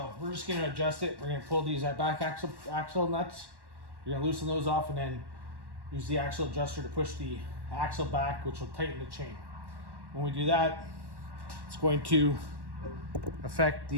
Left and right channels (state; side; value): late; left; 1.1 ms